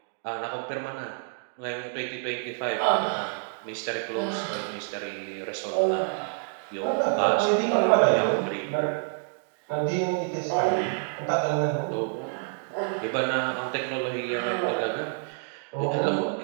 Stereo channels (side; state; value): left; silent; digital silence